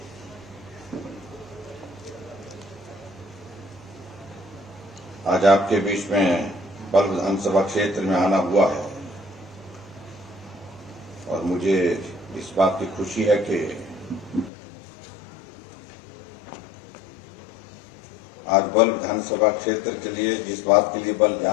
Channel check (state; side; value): drops out; right; at 14.5 s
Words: आज आपके बीच में बल्ह विधानसभा क्षेत्र में आना हुआ है और मुझे इस बात की खुशी है कि आज बल्ह विधानसभा क्षेत्र के लिए जिस बात के लिए बल्ह